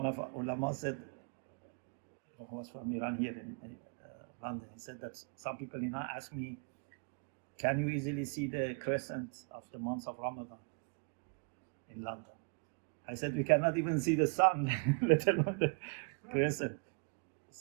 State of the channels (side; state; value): left; quieter; 39.4 dB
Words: of our ulama said, who was from Iran here in London, he said that some people ask me, can you easily see the crescent of the month of Ramadan in London? I said, we cannot even see the sun, let alone the crescent.